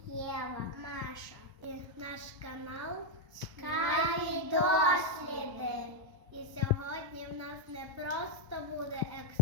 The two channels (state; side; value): late; left; 1.0 ms